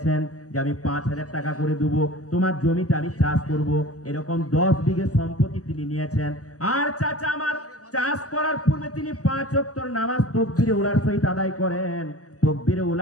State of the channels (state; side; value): late; right; 0.66 ms